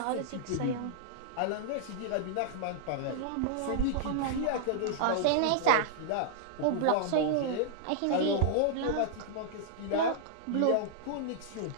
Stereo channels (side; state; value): both; different; correlation -0.01